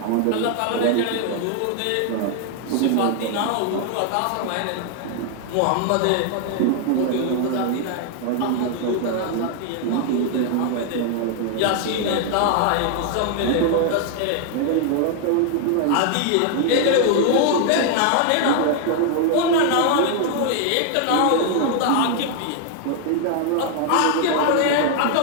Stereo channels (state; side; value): different; both; correlation 0.00